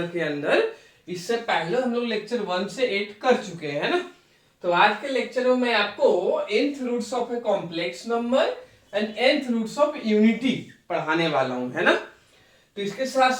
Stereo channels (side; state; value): both; identical; correlation 1.00